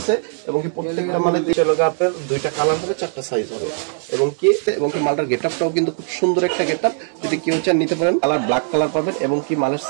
এবং কি প্রত্যেকটা মালে আপনার দুইটা কালার হবে, চারটা সাইজ হবে এবং কি মালটার গেটআপটাও কিন্তু খুব সুন্দর একটা গেটআপ। যদি কেউ চান নিতে পারেন, কালার ব্ল্যাক কালার পাবেন এবং কি মালের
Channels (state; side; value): silent; left; 64 dB below the other